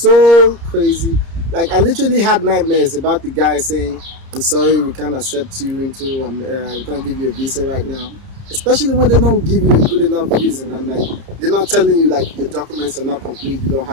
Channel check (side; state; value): left; late; 30 ms